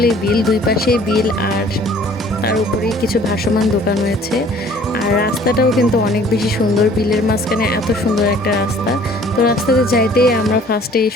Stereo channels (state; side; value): normal; both; correlation 0.54